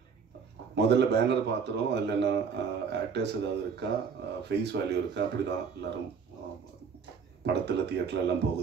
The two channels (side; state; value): left; quieter; 6.1 dB